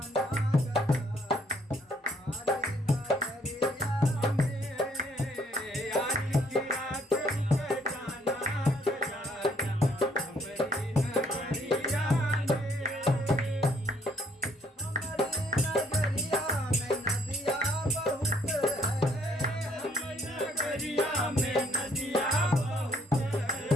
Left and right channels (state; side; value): normal; both; correlation 0.65